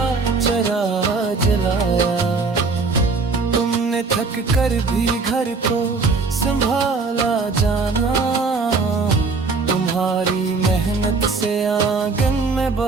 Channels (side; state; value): left; quieter; 4.2 dB